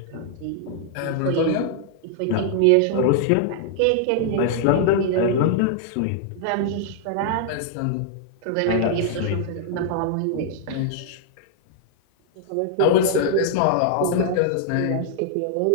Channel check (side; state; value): both; different; correlation -0.01